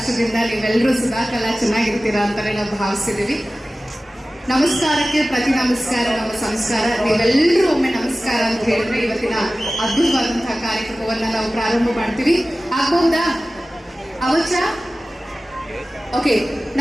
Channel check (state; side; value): normal; both; correlation 0.96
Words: ನೀವೆಲ್ಲರೂ ಸದಾಕಾಲ ಚೆನ್ನಾಗಿರ್ತೀರಾ ಅಂತಾನೆ ನಾವು ಭಾವಿಸಿದೀವಿ. ನಮಸ್ಕಾರಕ್ಕೆ ಪ್ರತಿ ನಮಸ್ಕಾರ ನಮ್ಮ ಸಂಸ್ಕಾರ. ನೀವೆಲ್ಲರೂ ಒಮ್ಮೆ ನಮಸ್ಕಾರ ಅಂತ ಹೇಳಿದ್ರೆ ಇವತ್ತಿನ ಅದ್ಭುತವಾದಂತಹ ಕಾರ್ಯಕ್ರಮವನ್ನ ನಾವು ಪ್ರಾರಂಭ ಮಾಡ್ತೀವಿ. ಆಗಬಹುದಾ? ಅವಚ ಓಕೆ.